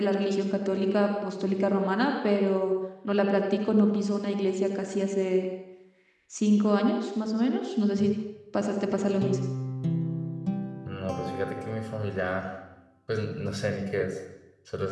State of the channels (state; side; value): identical; both; correlation 1.00